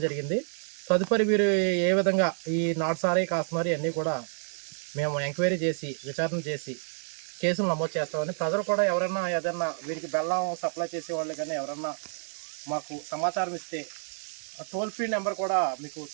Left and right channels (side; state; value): left; silent; 59 dB below the other